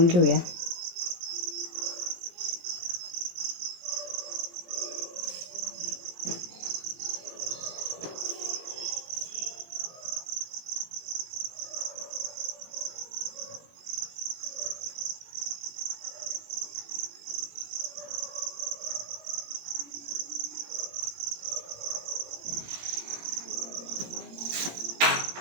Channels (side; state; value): left; late; 17 ms